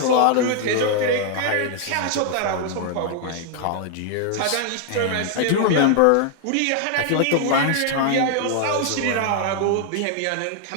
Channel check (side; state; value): both; different; correlation 0.00